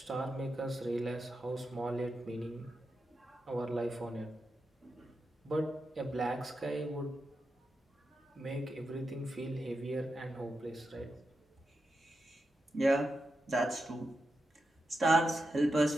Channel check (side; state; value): both; normal; correlation 0.88